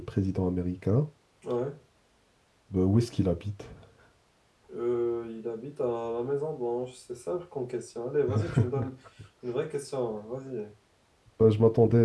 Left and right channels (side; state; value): both; identical; correlation 1.00